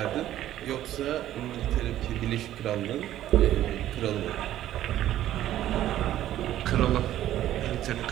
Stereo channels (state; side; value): quieter; left; 12.9 dB